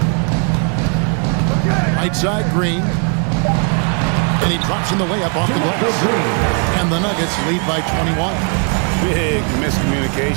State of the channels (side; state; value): left; quieter; 39.2 dB